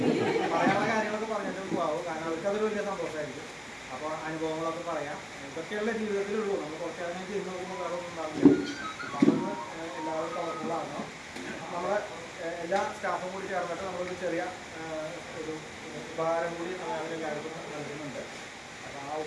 പറയാനുള്ള കാര്യങ്ങളൊക്കെ പറഞ്ഞിട്ട് പോകാവും. കാരണം അവർക്കതൊരു വലിയ സന്തോഷമായിരിക്കും. അപ്പോൾ അനുഭവങ്ങളൊക്കെ പറയാം. ഇതൊക്കെയുള്ള ജീവിതത്തിലുള്ളൂ. നമ്മൾ കുറച്ച് കാര്യം ചെയ്ത് നോക്കുമ്പോൾ വേറെ ഒന്നും ഉണ്ടാവില്ല. അതൊന്ന് എല്ലാവരും കളർഫുള്ളാകണം. നമ്മുടെ എല്ലാ സ്റ്റാഫും കൂടി ചേർന്നിട്ട് നമ്മളൊരു ചെറിയ ഒരു ഉപഹാരം കൂടി അവരെല്ലാവർക്കും നൽകുന്നുണ്ട്. അപ്പോൾ ആ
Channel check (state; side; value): identical; both; correlation 1.00